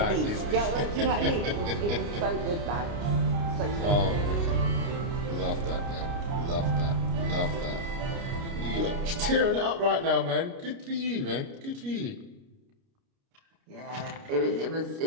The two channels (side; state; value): left; late; 29 ms